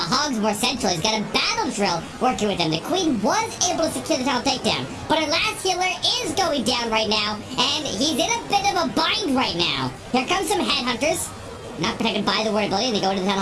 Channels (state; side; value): identical; both; correlation 1.00